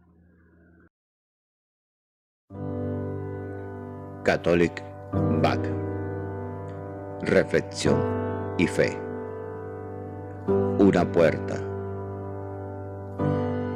Catholic Back. Reflexión y fe. Una puerta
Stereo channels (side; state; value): both; identical; correlation 1.00